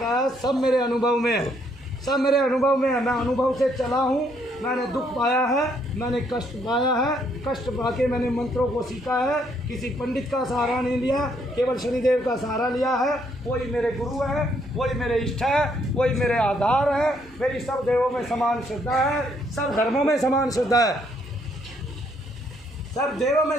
सब मेरे अनुभव में है, सब मेरे अनुभव में है। मैं अनुभव से चला हूँ, मैंने दुख पाया है, मैंने कष्ट पाया है, कष्ट पाके मैंने मंत्रों को सीखा है, किसी पंडित का सहारा नहीं लिया, केवल शनिदेव का सहारा लिया है। वही मेरे गुरु है, वही मेरे इष्ट है, वही मेरे आधार है। मेरी सब देवों में समान श्रद्धा है, सब धर्मों में समान श्रद्धा है, सब देवों में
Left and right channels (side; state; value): both; normal; correlation 0.70